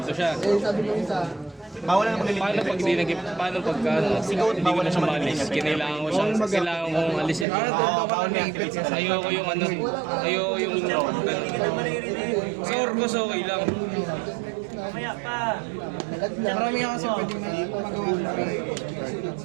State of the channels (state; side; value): drops out; left; at 7.5 s